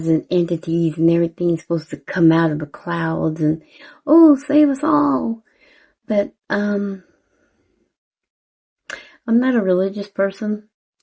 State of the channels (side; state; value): both; identical; correlation 1.00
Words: and entities and everything's supposed to come out of the clouds and, oh, save us all. But, I'm not a religious person,